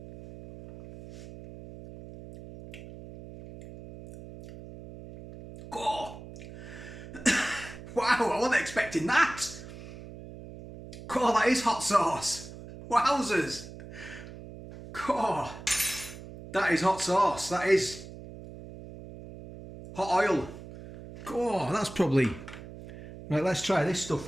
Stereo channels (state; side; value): noise; right; hum, 14 dB below the sound